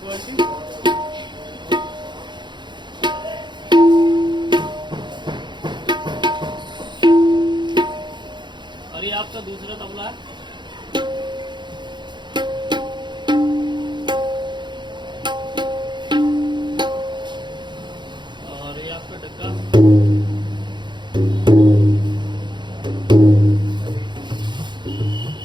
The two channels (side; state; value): left; late; 0.22 ms